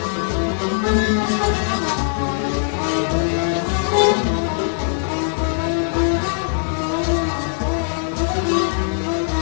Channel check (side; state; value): right; silent; 66 dB below the other